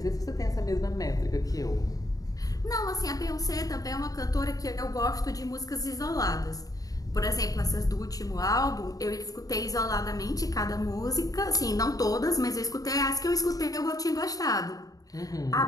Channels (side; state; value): right; late; 0.18 ms